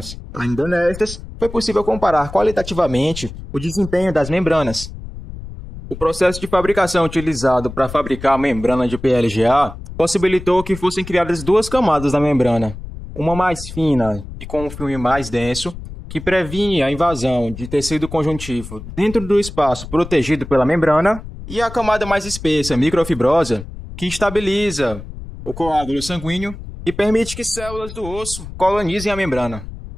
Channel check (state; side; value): noise; left; rumble, 12 dB below the sound